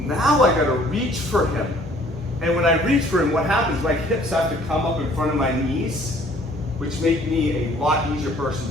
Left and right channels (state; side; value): normal; both; correlation 0.57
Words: now I gotta reach for him. And when I reach for him, what happens, my hips have to come up in front of my knees, which make me a lot easier person